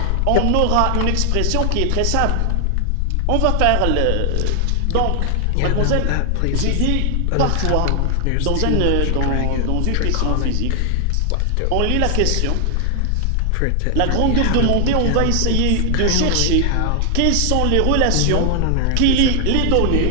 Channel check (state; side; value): different; both; correlation 0.00